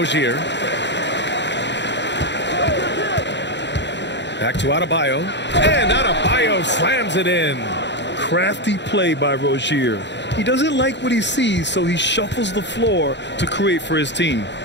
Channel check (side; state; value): right; late; 0.52 ms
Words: Back to Adebayo. And Adebayo slams it in. Crafty play by Rozier. He doesn't like what he sees, so he shuffles the floor to create for his team.